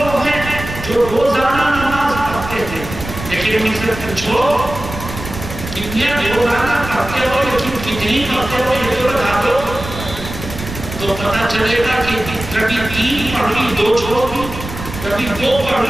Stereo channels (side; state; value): right; noise; rumble, 10 dB below the sound